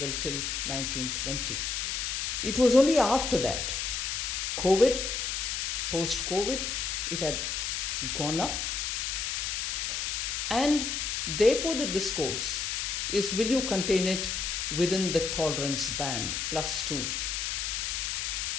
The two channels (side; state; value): left; noise; hiss, 1 dB below the sound